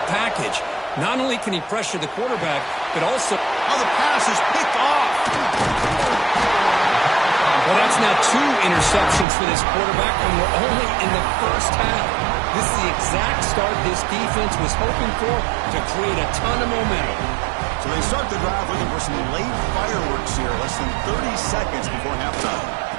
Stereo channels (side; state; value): left; drops out; at 9.2 s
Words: package. Not only can he pressure the quarterback, but also... Oh, the pass is picked off. Well, that's now 2 interceptions for this quarterback when we're only in the first half. This is the exact start this defense was hoping for to create a ton of momentum. So they start the drive looking for some late fireworks here, less than 30 seconds before halftime.